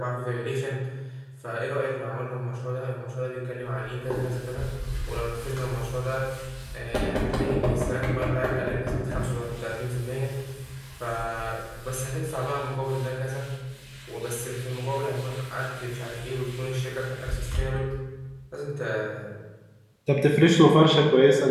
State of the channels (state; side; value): identical; both; correlation 1.00